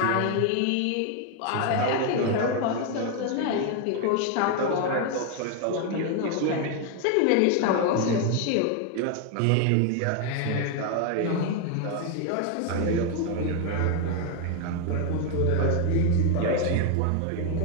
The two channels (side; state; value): both; different; correlation 0.01